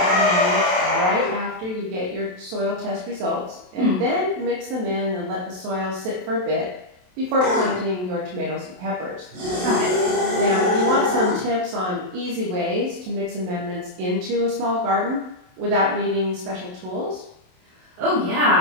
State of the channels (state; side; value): late; left; 27 ms